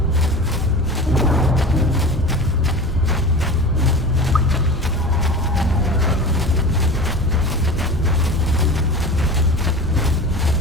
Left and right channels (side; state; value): both; normal; correlation 0.33